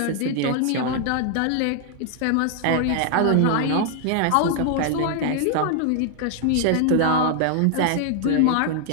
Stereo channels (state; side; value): different; both; correlation 0.00